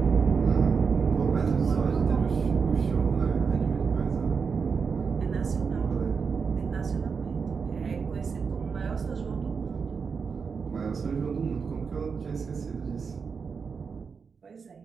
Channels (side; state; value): left; quieter; 5.6 dB